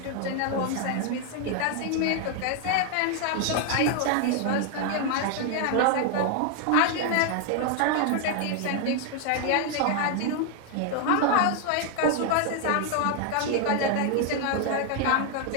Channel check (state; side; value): different; both; correlation 0.01